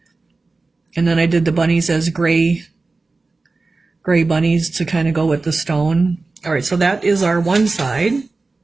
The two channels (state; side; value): quieter; left; 3.7 dB